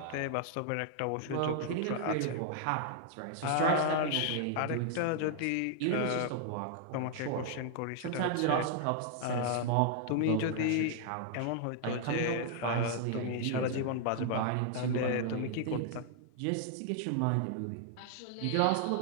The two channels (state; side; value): different; both; correlation -0.01